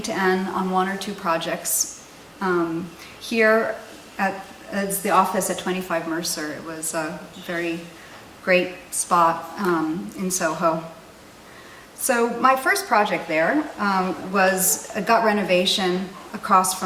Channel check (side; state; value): both; identical; correlation 1.00